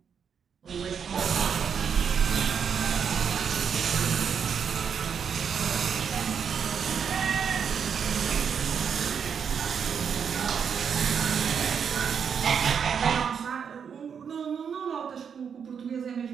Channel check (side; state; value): left; quieter; 7.1 dB